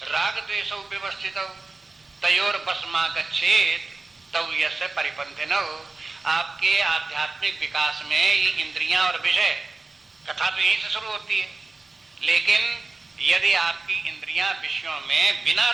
राग द्वेषौ व्यवस्थितौ तयोर बसमा गच्छेत् तौ यस्य परिपन्थिनौ। आपके आध्यात्मिक विकास में ये इंद्रियां और विषय, कथा तो यहीं से शुरू होती है, लेकिन यदि आपकी इंद्रियां विषयों में बिना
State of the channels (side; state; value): left; quieter; 3.6 dB